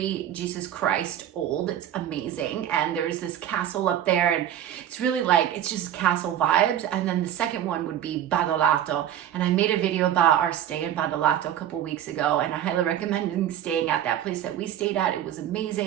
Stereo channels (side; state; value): left; quieter; 10.9 dB